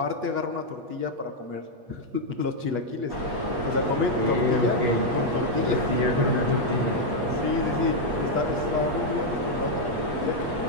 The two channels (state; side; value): late; left; 8.3 ms